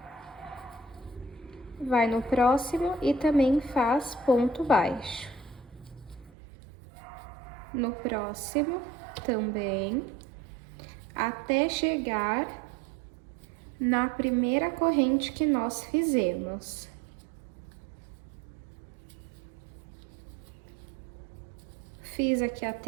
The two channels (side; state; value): left; drops out; at 6.3 s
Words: Vai no próximo e também faz ponto baixo. No próximo também, até chegar na primeira corrente que nós fizemos. Fiz aqui